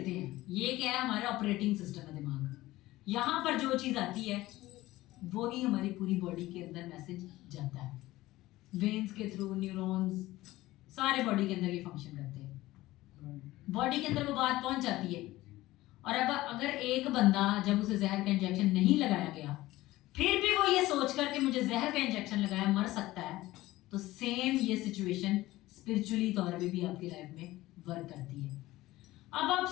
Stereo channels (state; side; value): quieter; right; 17.4 dB